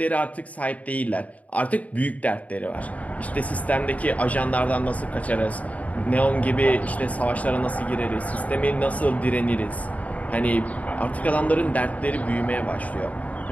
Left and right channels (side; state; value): right; late; 0.070 ms